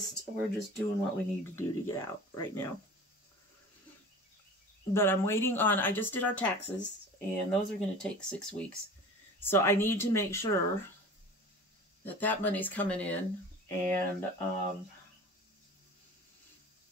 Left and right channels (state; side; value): normal; both; correlation 0.38